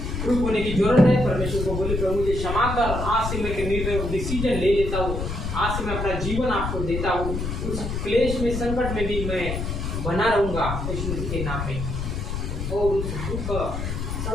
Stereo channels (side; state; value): left; noise; rumble, 4 dB below the sound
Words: होने की जरूरत है। परमेश्वर को बोले, प्रभु मुझे क्षमा कर, आज से मैं निर्णय डिसीजन ले लेता हूँ, आज से मैं अपना जीवन आपको देता हूँ। उस क्लेश में संकट में भी मैं बना रहूँगा यीशु मसीह के नाम में, और उस दुख